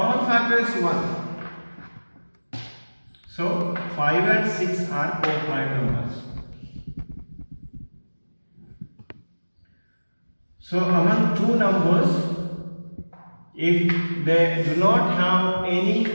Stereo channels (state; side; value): inverted; both; correlation -1.00